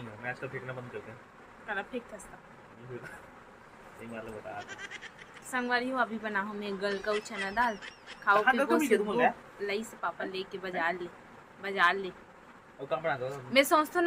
है मैं आजकल फेंकना बंद कर दिया कला फेंक था सही मतलब बता संगवारी हो अभी बना हूं मैं गल का चना दाल खाओ पी लई से पापा लेके बाजार ले और कब बना दो मैं सोचता हूं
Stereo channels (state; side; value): identical; both; correlation 1.00